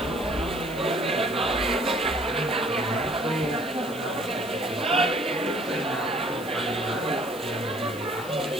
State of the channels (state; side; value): noise; left; hiss, 17 dB below the sound